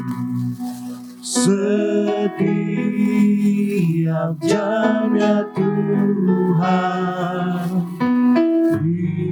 Setiap jam ya Tuhan,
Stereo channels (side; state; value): both; identical; correlation 1.00